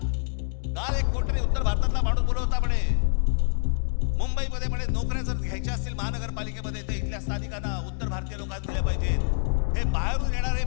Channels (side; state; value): right; silent; digital silence